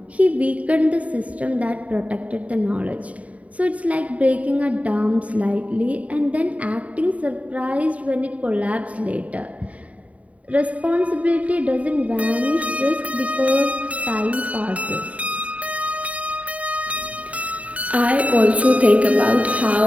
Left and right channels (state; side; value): late; left; 0.068 ms